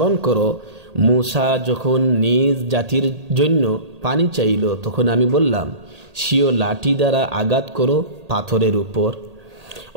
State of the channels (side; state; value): left; late; 1.8 ms